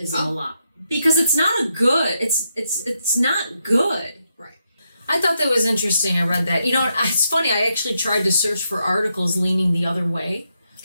lot. Because it's not it's not good. Right. I thought that was interesting. I read that. You know, it's funny. I actually tried to search for articles leaning the other way.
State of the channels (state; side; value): inverted; both; correlation -0.81